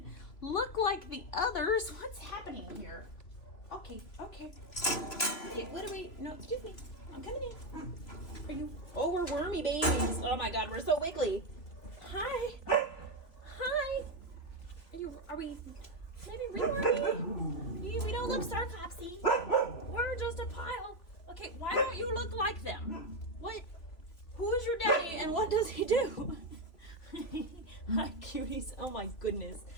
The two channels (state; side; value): late; right; 3.1 ms